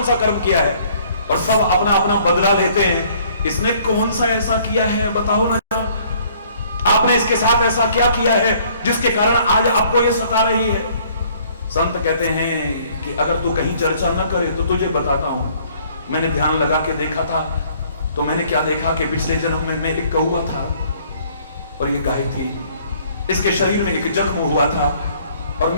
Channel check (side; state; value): both; inverted; correlation -0.59